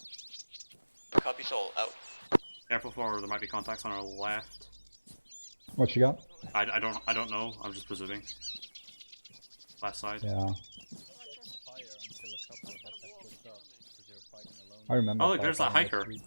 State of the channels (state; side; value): inverted; both; correlation -1.00